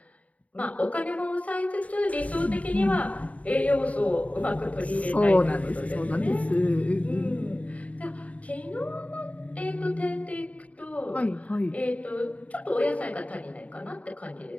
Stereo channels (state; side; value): late; right; 0.068 ms